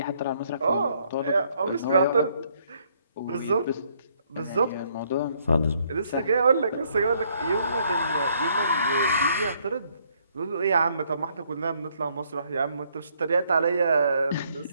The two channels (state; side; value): inverted; both; correlation -0.69